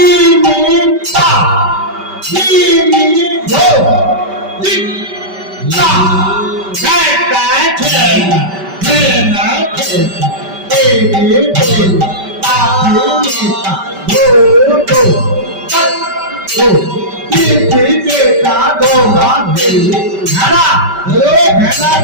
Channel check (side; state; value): left; late; 5.2 ms